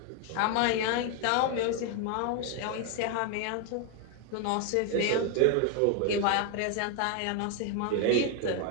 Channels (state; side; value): different; both; correlation 0.01